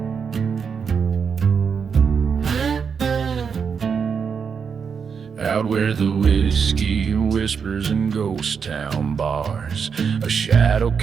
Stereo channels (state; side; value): quieter; left; 6.3 dB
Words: Out where the whiskey whispers in ghost town bars, a shadow